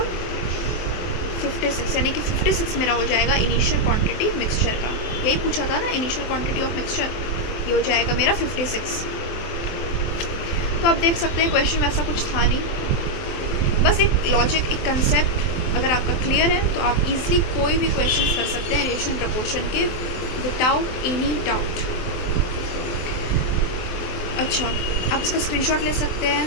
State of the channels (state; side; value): late; right; 23 ms